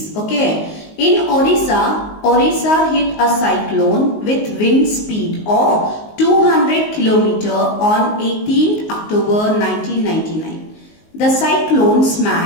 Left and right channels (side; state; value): right; late; 19 ms